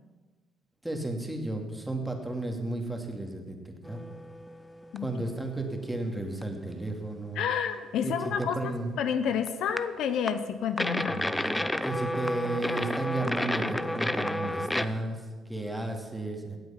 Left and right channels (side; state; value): both; normal; correlation 0.76